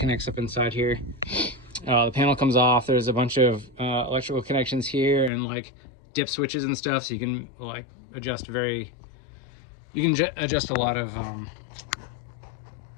up inside here. The panel comes off. There's a bunch of electrical connections here and like dip switches and stuff, so you can like adjust a lot of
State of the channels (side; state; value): right; drops out; at 5.3 s